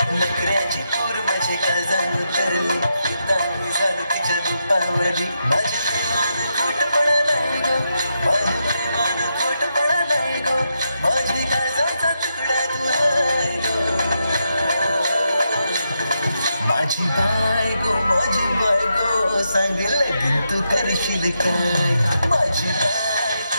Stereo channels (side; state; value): both; inverted; correlation -0.83